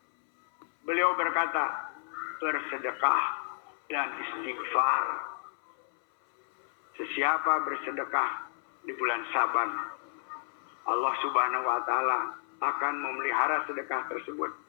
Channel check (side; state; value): right; silent; 57 dB below the other